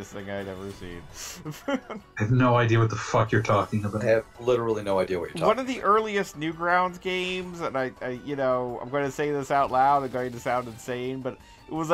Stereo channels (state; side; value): identical; both; correlation 1.00